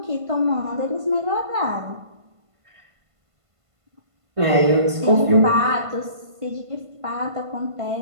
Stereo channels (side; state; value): left; late; 1.5 ms